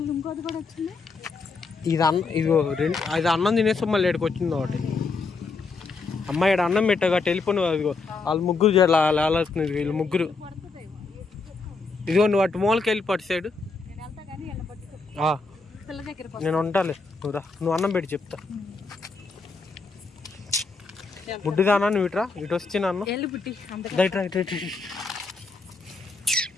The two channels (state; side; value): quieter; right; 4.1 dB